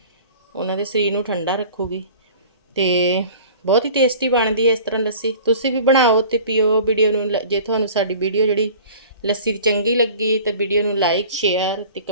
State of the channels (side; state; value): both; inverted; correlation -0.44